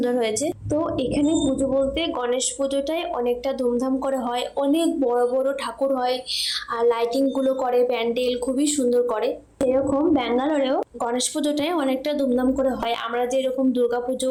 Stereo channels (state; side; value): identical; both; correlation 1.00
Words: হয়েছে। তো এখানে পুজো বলতে গণেশ পুজোটাই অনেকটা ধুমধাম করে হয়, অনেক বড় বড় ঠাকুর হয়, আর লাইটিং গুলো করে, প্যান্ডেল খুবই সুন্দর করে। এরকম ব্যাঙ্গালোরেও গণেশ পুজোটাই অনেকটা ধুমধাম করে হয়, আমরা যেরকম দুর্গা